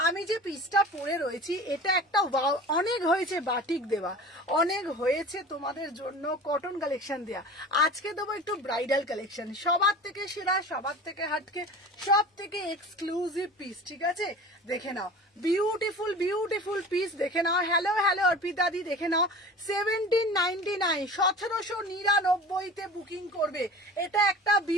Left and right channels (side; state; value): both; normal; correlation 0.38